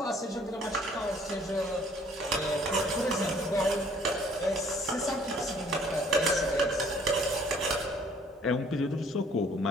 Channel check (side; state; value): both; normal; correlation 0.58